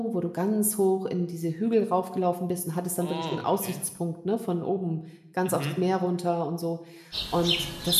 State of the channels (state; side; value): identical; both; correlation 1.00